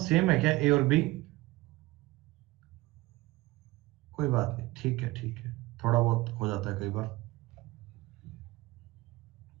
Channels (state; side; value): quieter; left; 20.1 dB